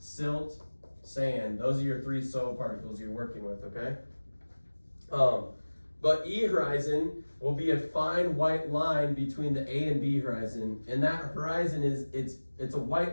sand. Those are your 3 soil particles you're working with, okay? But E horizon will be a fine white line between the A and B horizon. And that horizon it's a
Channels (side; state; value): both; inverted; correlation -1.00